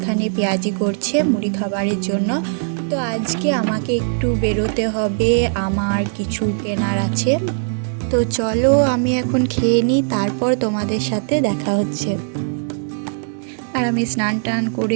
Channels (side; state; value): left; silent; digital silence